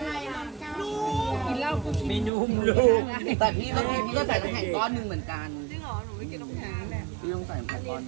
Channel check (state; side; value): drops out; left; at 2.3 s